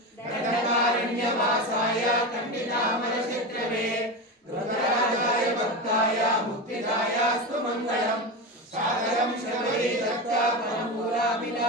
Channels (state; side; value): normal; both; correlation 0.20